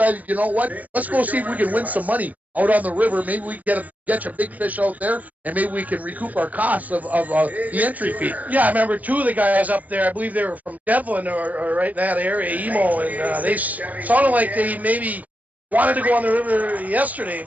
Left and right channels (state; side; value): late; left; 0.076 ms